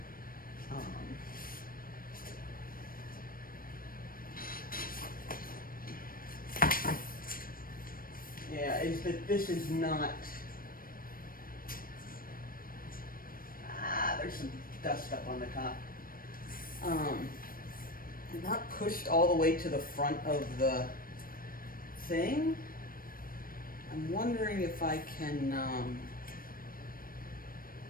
Yeah, is that this is not, there's some dust up on the top. Not pushed all the way to the front of the thing. I'm wondering if I can,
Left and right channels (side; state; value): right; late; 0.41 ms